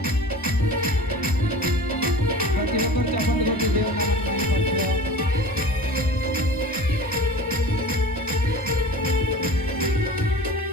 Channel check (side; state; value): both; normal; correlation 0.39